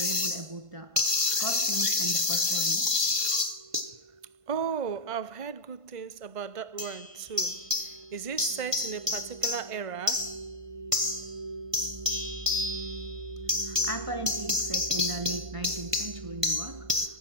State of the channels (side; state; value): left; late; 1.5 ms